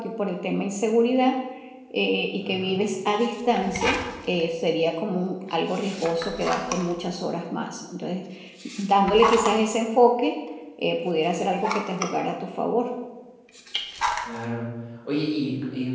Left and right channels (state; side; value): identical; both; correlation 1.00